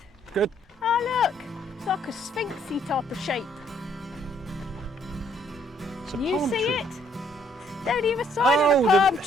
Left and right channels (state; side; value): normal; both; correlation 0.66